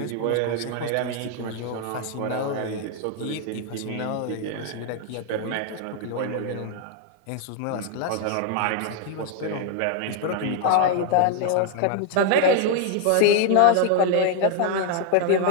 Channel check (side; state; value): both; different; correlation 0.00